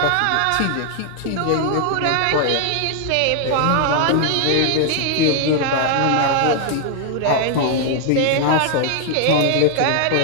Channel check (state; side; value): different; both; correlation 0.00